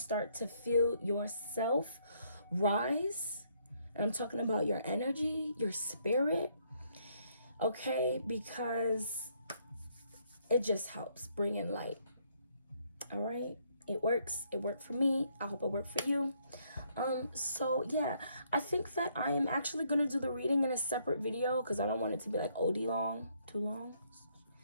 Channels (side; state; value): both; inverted; correlation -0.70